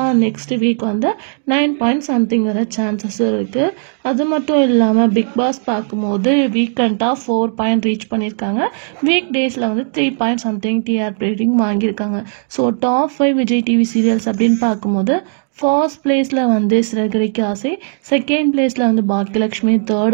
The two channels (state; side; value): silent; left; digital silence